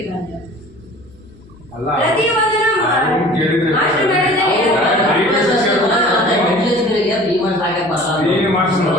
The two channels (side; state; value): left; noise; hum, 26 dB below the sound